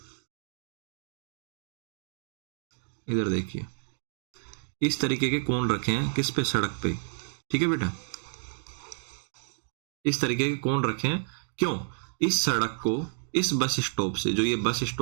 इधर देखिए, इस तरीके के कोन रखे हैं किस पे? सड़क पे। ठीक है बेटा, इस तरीके के कोन रखे हैं। क्यों? इस सड़क को इस बस स्टॉप से, जो ये बस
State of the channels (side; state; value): left; silent; digital silence